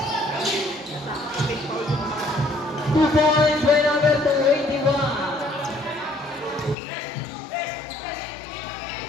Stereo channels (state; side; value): drops out; right; at 6.8 s